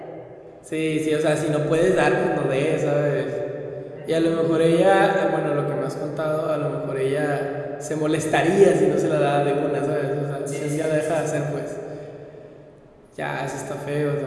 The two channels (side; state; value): both; identical; correlation 1.00